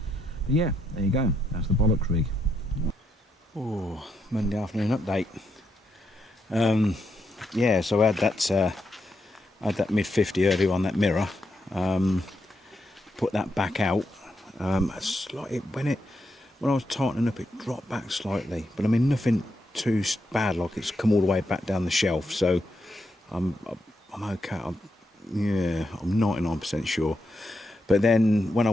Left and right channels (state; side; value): normal; both; correlation 0.81